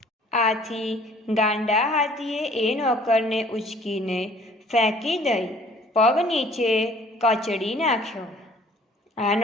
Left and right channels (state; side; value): normal; both; correlation 0.54